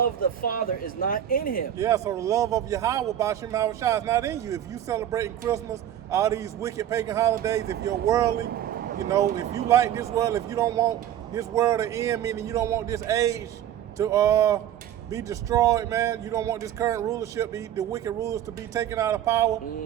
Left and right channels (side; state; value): left; quieter; 11.0 dB